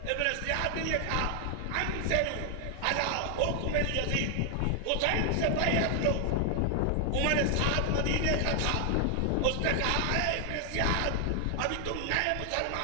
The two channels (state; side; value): different; both; correlation 0.00